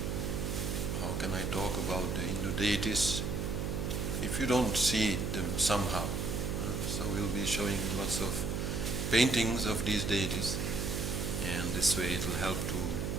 how can I talk about the Hindu deities if you don't see them somehow? So we'll be showing lots of paintings of these deities, and this way it will help to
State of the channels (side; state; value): right; noise; hum, 1 dB below the sound